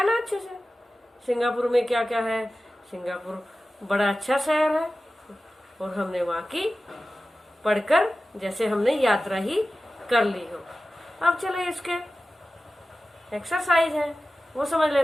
ना अच्छे से। सिंगापुर में क्या क्या है। सिंगापुर बड़ा अच्छा शहर है और हमने वहाँ की पढ़कर जैसे हमने यात्रा ही कर ली हो। अब चले इसके एक्सरसाइज है वो समझ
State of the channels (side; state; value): both; normal; correlation 0.95